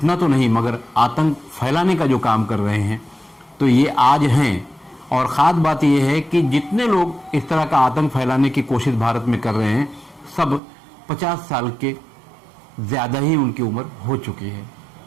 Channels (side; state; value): left; drops out; at 10.6 s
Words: तो नहीं, मगर आतंक फैलाने का जो काम कर रहे हैं, तो ये आज हैं। और ख़ास बात यह है कि जितने लोग इस तरह का आतंक फैलाने की कोशिश भारत में कर रहे हैं, सब 50 साल के ज़्यादा ही उनकी उम्र हो चुकी है।